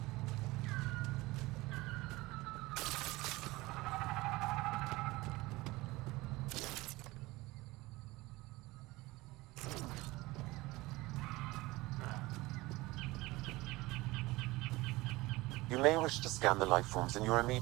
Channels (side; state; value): left; quieter; 20.6 dB